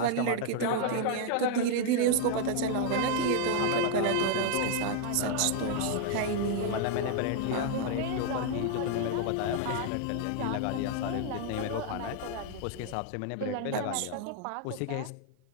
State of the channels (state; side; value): different; both; correlation 0.00